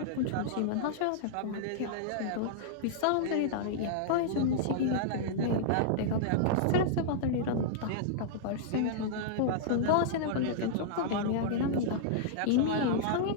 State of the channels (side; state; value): both; different; correlation -0.02